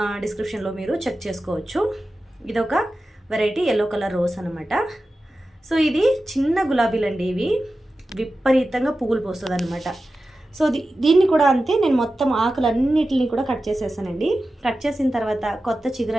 డిస్క్రిప్షన్లో మీరు చెక్ చేసుకోవచ్చు. ఇదొక వెరైటీ ఎల్లో కలర్ రోజ్ అనమాట. సో ఇది చిన్న గులాబీలండి. ఇవి విపరీతంగా పువ్వులు పోస్తుంది అనమాట. సో దీన్ని కూడా అంతే, నేను మొత్తం ఆకులన్నిటిని కూడా కట్ చేసేసానండి. కట్ చేసిన తర్వాత కొత్త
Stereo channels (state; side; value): normal; both; correlation 0.93